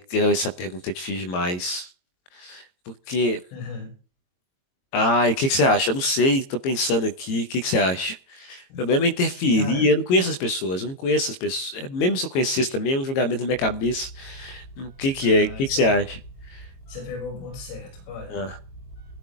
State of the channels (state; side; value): late; right; 22 ms